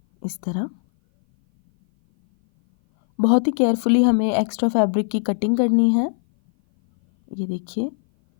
इस तरह। बहुत ही केयरफुली हमें एक्स्ट्रा फैब्रिक की कटिंग करनी है। ये देखिए,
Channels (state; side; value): silent; right; 59 dB below the other